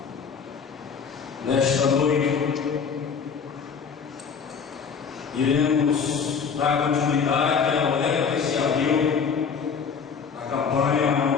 nesta noite iremos dar continuidade ao leva que se abriu a campanha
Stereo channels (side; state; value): right; quieter; 6.2 dB